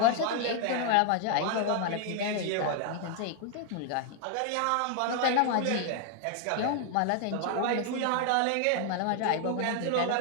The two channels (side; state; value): both; different; correlation 0.00